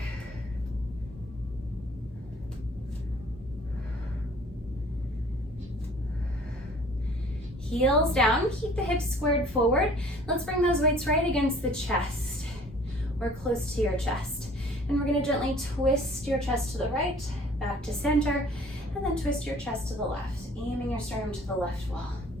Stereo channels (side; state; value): both; normal; correlation 0.52